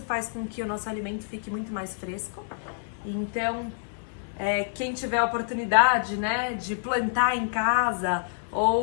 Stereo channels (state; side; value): silent; right; digital silence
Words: faz com que o nosso alimento fique muito mais fresco. Então, quem tiver a oportunidade, né, de plantar em casa